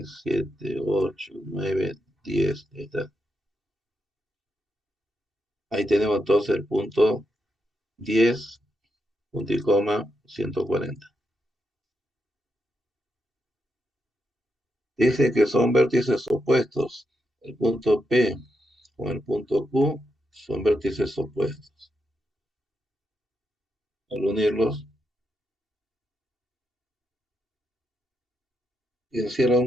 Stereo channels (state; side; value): normal; both; correlation 0.83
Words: 7, 8, 9, 10. Ahí está. Ahí tenemos entonces el punto 10, punto y coma, 140. Dice que son vértices opuestos. El punto P con el punto Q son vértices opuestos. Al unirlos, encierra